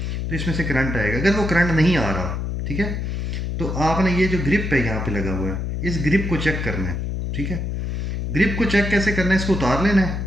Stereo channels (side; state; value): left; noise; hum, 3 dB below the sound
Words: इसमें से करंट आएगा। अगर वो करंट नहीं आ रहा, ठीक है, तो आपने ये जो ग्रिप है यहाँ पे लगा हुआ है, इस ग्रिप को चेक करना है, ठीक है। ग्रिप को चेक कैसे करना है, इसको उतार लेना है